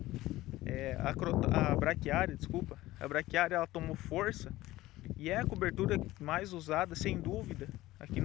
a braquiária ela tomou força e é a cobertura mais usada, sem dúvida, aqui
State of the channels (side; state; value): right; quieter; 17.0 dB